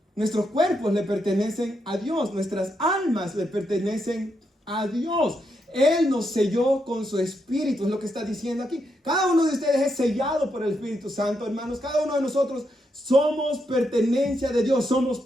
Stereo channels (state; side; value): normal; both; correlation 0.81